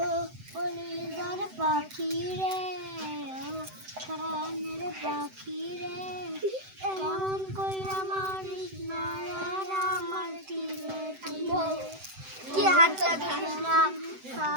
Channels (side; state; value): left; late; 7.8 ms